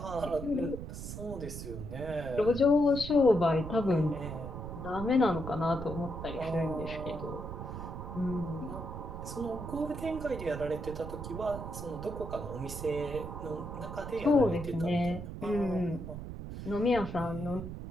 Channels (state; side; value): noise; right; rumble, 8 dB below the sound